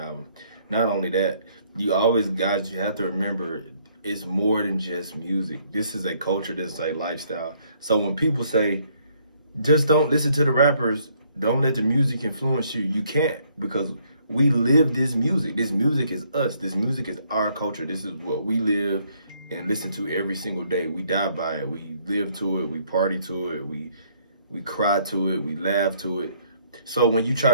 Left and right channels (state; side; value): inverted; both; correlation -0.67